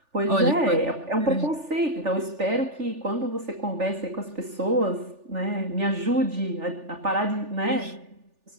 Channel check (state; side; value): late; left; 3.4 ms